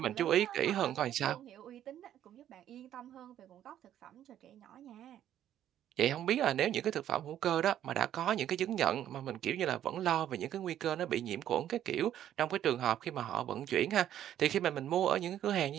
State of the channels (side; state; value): left; quieter; 11.2 dB